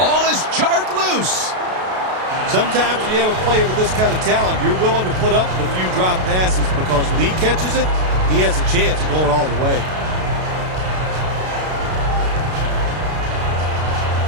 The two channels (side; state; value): left; late; 33 ms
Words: is jarred loose. Sometimes when you have a player with this kind of talent, you're willing to put up with a few drop passes because when he catches it, he has a chance of going all the way.